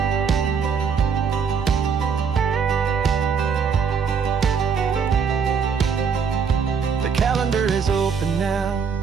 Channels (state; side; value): quieter; left; 6.2 dB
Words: The calendar is open